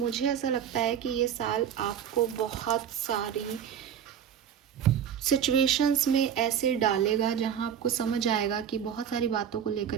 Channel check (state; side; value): quieter; left; 8.7 dB